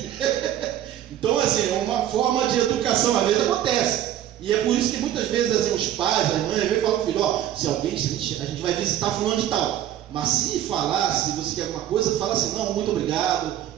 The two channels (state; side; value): quieter; left; 11.7 dB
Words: Então, assim, é uma forma de educação, às vezes acontece. E é por isso que muitas vezes assim, os pais, as mães, vêm e falam: filho, se alguém, a gente vai visitar fulano de tal. Mas se falar, se você quer alguma coisa, fala assim: não, muito obrigado,